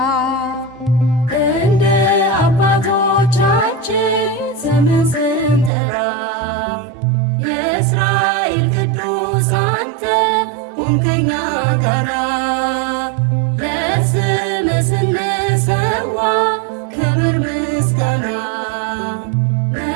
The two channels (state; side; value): drops out; left; at 5.7 s